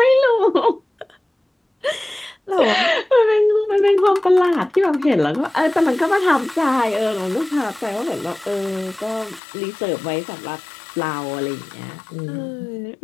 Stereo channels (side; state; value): right; drops out; at 9.4 s